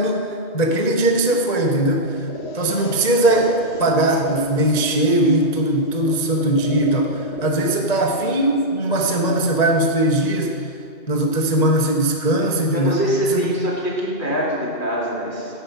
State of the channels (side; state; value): right; late; 1.9 ms